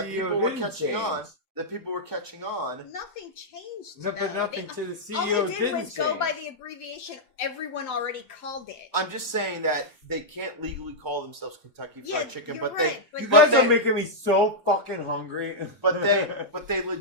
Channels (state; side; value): normal; both; correlation -0.07